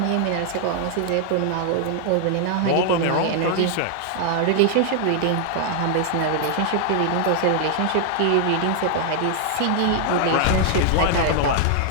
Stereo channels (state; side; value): different; both; correlation 0.00